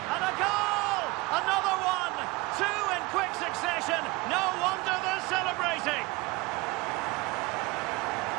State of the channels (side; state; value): left; quieter; 23.3 dB